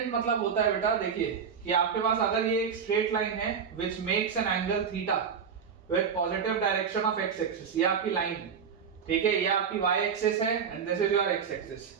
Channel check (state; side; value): quieter; left; 6.7 dB